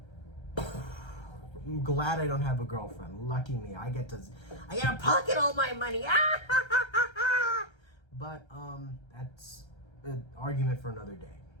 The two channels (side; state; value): right; late; 1.3 ms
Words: I'm glad I don't have a girlfriend. Lucky me. I get to pocket all my money. But that's an argument for another day.